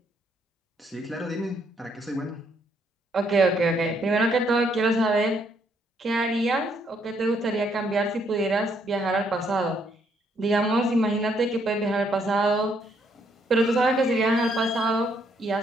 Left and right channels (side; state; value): both; normal; correlation 0.71